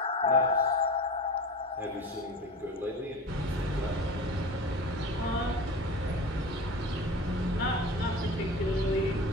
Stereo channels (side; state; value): both; normal; correlation 0.32